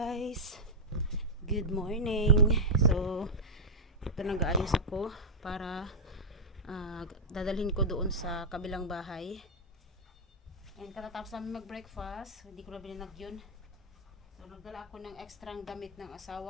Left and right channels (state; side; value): normal; both; correlation -0.06